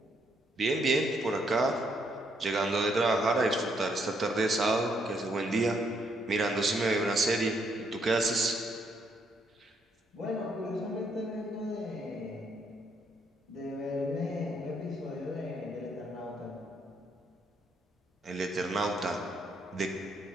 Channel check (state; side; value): normal; both; correlation 0.73